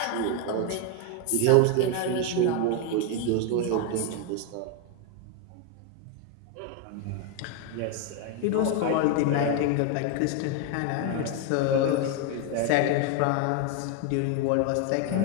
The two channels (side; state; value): both; different; correlation 0.01